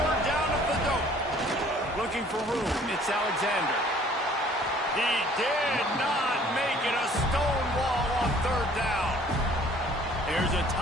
down at the dope. Looking for room, it's Alexander. He did not make it a stone wall on 3rd down. There's a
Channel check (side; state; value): both; normal; correlation 0.55